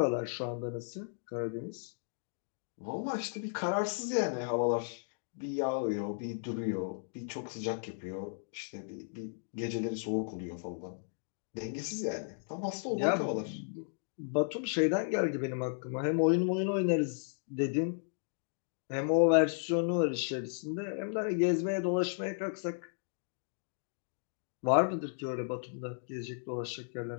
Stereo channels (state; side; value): silent; right; digital silence